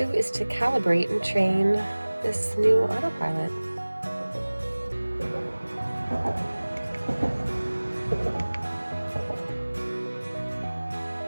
is to calibrate and train this new autopilot.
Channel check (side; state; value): both; inverted; correlation -1.00